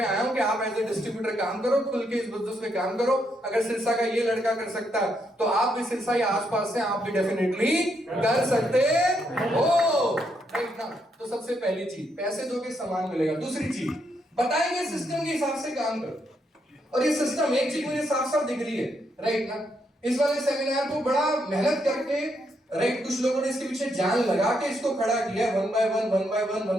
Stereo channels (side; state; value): both; normal; correlation 0.77